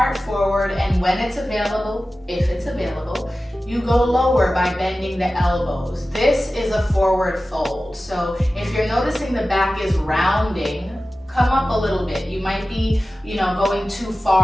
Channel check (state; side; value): normal; both; correlation 0.95